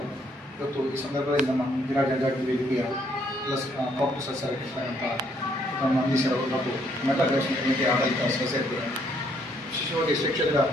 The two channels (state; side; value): normal; both; correlation 0.69